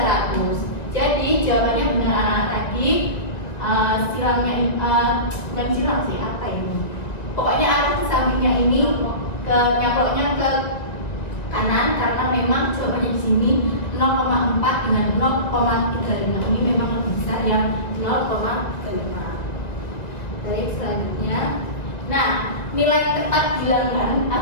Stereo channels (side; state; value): right; late; 1.9 ms